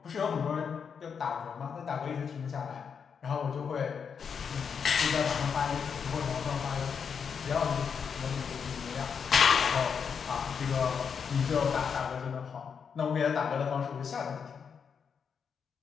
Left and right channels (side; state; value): right; quieter; 6.6 dB